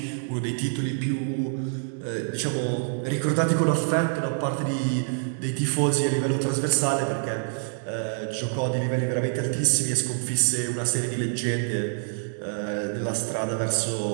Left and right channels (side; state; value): left; silent; digital silence